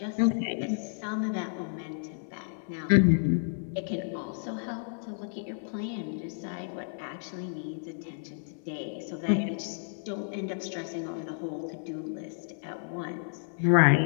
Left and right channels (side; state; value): right; silent; 57 dB below the other